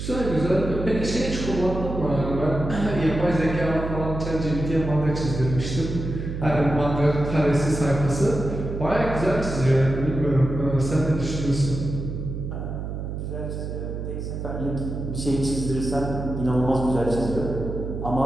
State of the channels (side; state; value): right; noise; hum, 5 dB below the sound